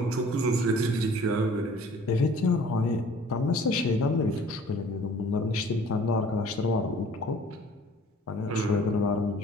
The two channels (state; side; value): normal; both; correlation 0.51